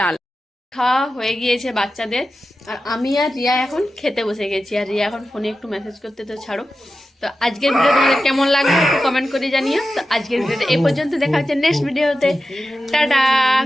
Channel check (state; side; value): normal; both; correlation 0.92